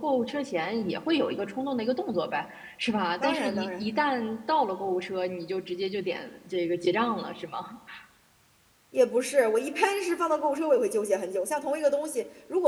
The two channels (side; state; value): both; identical; correlation 1.00